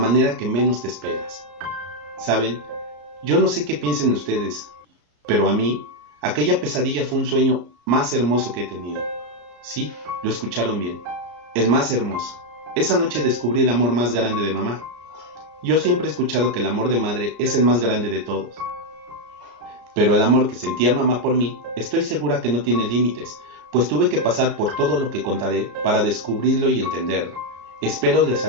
que menos te esperas. ¿Saben? Yo no sé qué piensen ustedes, pero a mí, aquella pesadilla fue un sueño más hermoso que he tenido. Sí, lo escucharon bien, el más hermoso. Esa noche descubrí el amor más grande de mamá. Yo siempre he escuchado que el amor de madre es el más grande de todos. Pero el amor que sentía mamá por mí, estoy segura que no tiene límites, pues tuve que pasar por todo lo que contaré para descubrirlo y entenderlo. Espero les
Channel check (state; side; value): late; left; 33 ms